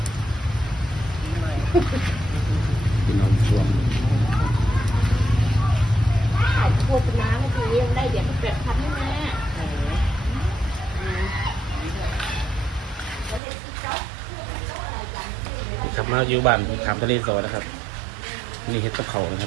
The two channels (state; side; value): drops out; left; at 13.4 s